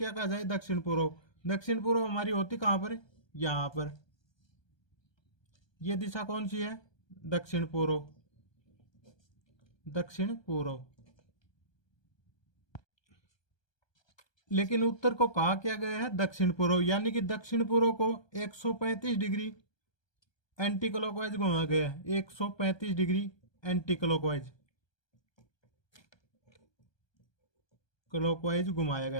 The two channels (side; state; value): right; late; 1.2 ms